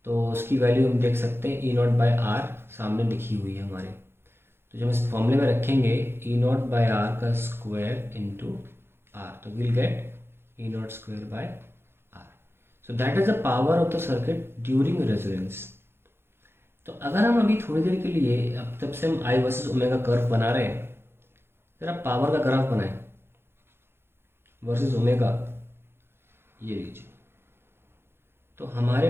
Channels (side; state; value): left; late; 0.11 ms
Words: तो उसकी वैल्यू हम देख सकते हैं ई नॉट बाय आर सामने लिखी हुई है हमारे, तो जब इस फॉर्मूले में रखेंगे ई नॉट बाय आर का स्क्वायर इंटू आर, तो will get E naught square by R. So that is the power of the circuit during resonance. तो अगर हम अभी थोड़ी देर के लिए, अब तब से हम आई वर्सेस ओमेगा कर्व बना रहे हैं, जरा पावर का ग्राफ बनाएं वर्सेस ओमेगा, ये लीजिए। तो हमारे